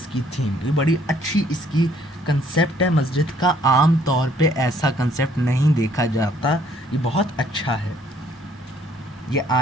کی تھیم یہ بڑی اچھی اس کی کنسیپٹ ہے مسجد کا. عام طور پہ ایسا کنسیپٹ نہیں دیکھا جاتا. یہ بہت اچھا ہے. یہ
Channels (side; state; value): both; normal; correlation 0.63